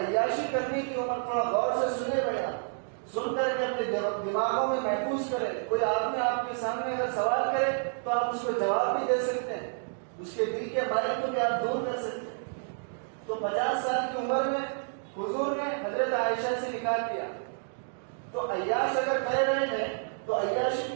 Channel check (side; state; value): left; silent; digital silence